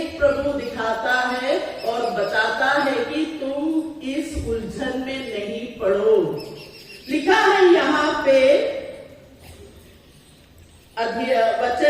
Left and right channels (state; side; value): identical; both; correlation 1.00